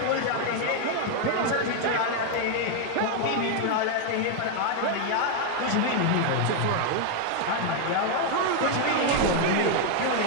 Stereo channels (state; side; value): different; both; correlation 0.01